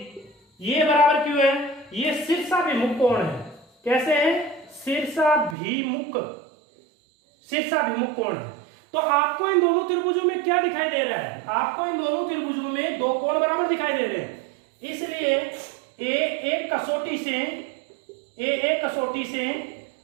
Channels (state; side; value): drops out; left; at 5.6 s